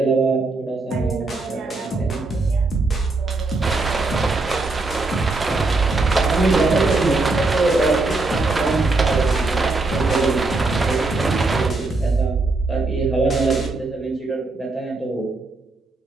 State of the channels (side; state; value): left; quieter; 3.3 dB